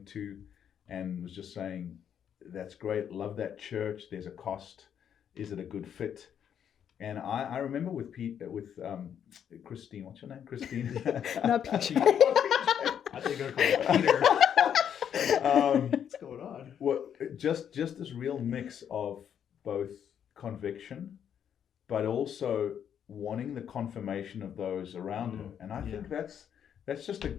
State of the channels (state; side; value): quieter; right; 8.8 dB